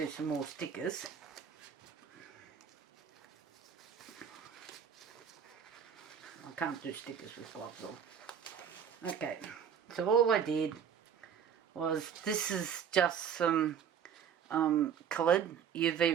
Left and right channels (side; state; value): left; quieter; 7.9 dB